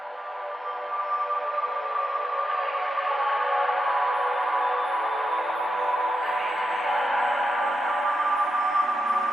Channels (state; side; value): normal; both; correlation 0.88